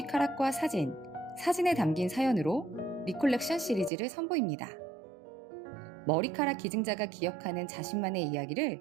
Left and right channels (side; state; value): left; drops out; at 3.9 s